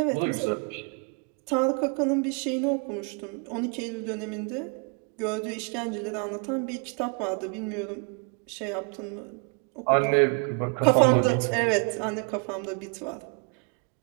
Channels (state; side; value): quieter; left; 34.2 dB